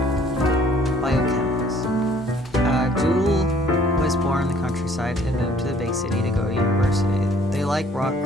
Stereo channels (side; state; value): both; normal; correlation 0.58